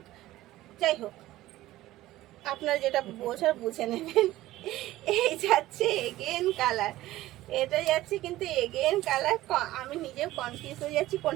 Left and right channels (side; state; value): left; quieter; 16.0 dB